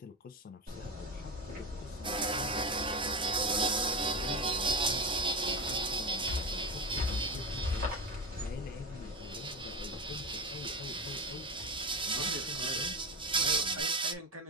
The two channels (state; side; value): normal; both; correlation 0.21